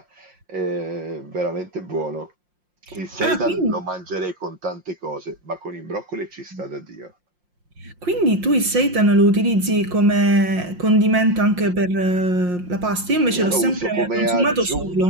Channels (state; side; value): late; left; 5.6 ms